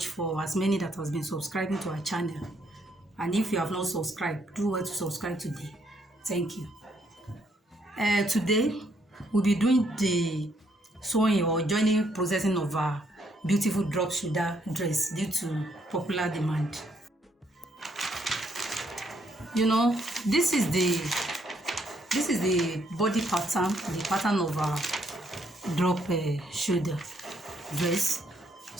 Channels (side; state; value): both; normal; correlation 0.72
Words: for as many that has been subscribing to our channel, and if you have not subscribed, do well to subscribe today. Thank you. Today we'll be doing the sewing or joining processing of our beautiful drop shoulder dress due to popular demand. You know, this is the body pattern, the pattern of our drop shoulder dress.